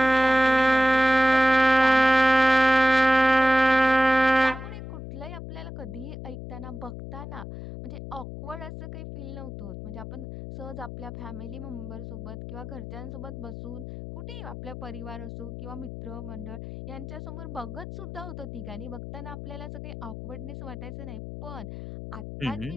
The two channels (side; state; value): left; noise; hum, 10 dB below the sound